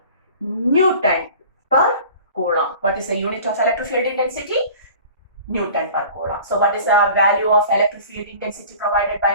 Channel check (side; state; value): both; inverted; correlation -0.44